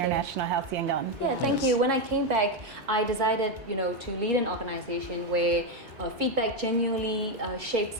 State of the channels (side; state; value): left; late; 2.2 ms